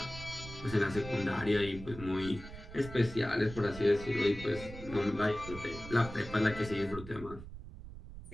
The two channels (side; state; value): right; noise; rumble, 13 dB below the sound